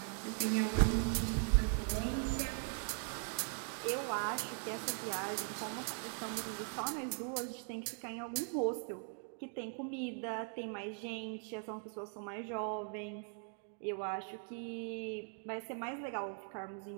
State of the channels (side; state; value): left; silent; 51 dB below the other